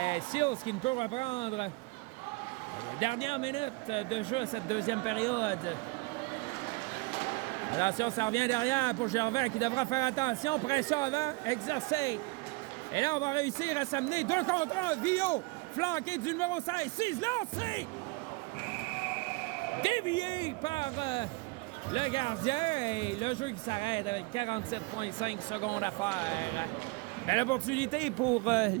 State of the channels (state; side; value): quieter; left; 27.0 dB